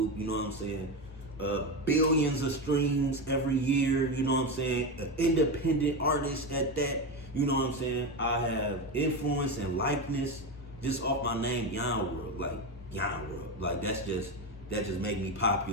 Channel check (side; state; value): both; normal; correlation 0.16